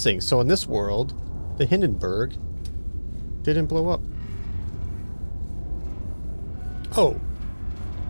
so in this world, the Hindenburg didn't blow up. Oh.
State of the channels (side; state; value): both; inverted; correlation -1.00